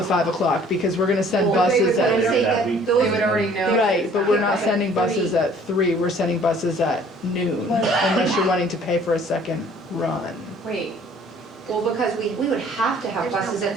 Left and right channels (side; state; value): both; normal; correlation 0.55